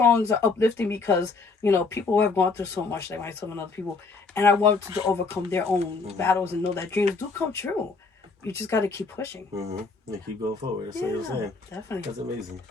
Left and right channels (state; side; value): quieter; right; 4.2 dB